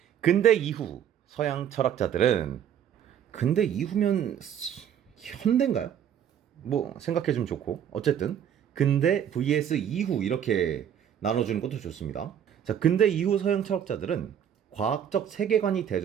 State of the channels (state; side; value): quieter; left; 9.2 dB